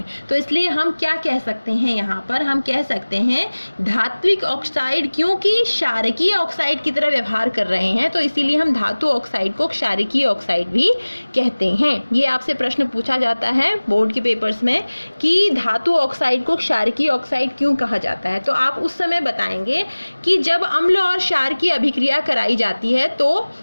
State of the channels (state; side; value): inverted; both; correlation -1.00